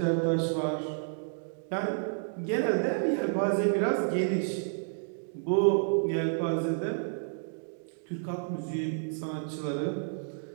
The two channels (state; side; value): silent; left; digital silence